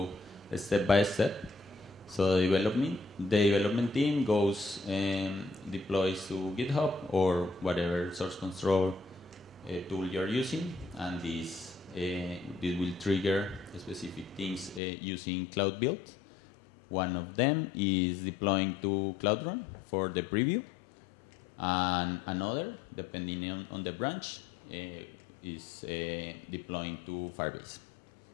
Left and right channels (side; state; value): right; drops out; at 14.8 s